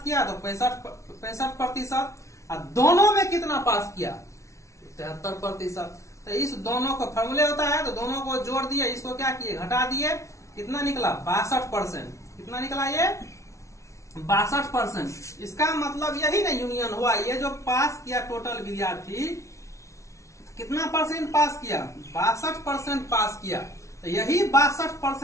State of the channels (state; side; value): late; right; 0.14 ms